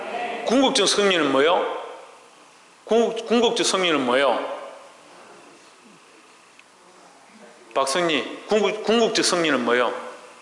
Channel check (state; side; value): identical; both; correlation 1.00